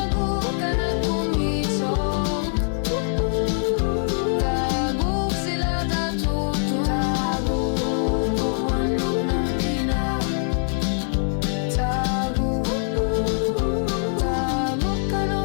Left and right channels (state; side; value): silent; right; digital silence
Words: kanak kumisok Tagu sila tatutu Tagu wanut namina Tagu